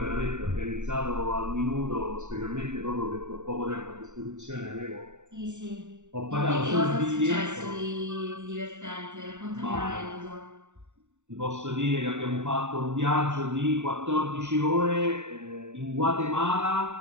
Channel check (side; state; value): left; late; 0.84 ms